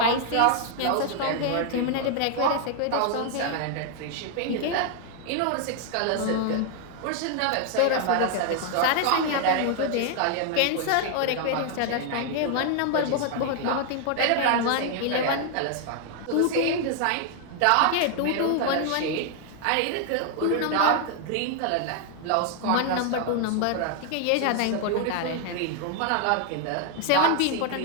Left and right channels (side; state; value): both; different; correlation 0.00